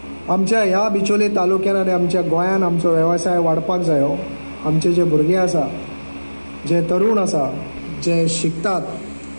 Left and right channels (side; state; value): both; inverted; correlation -1.00